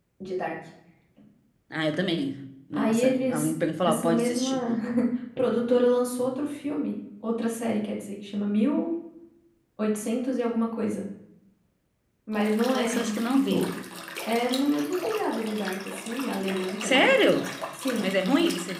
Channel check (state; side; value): identical; both; correlation 1.00